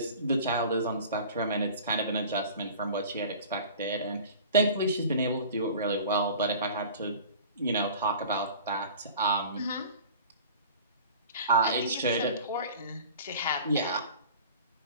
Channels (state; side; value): inverted; both; correlation -0.42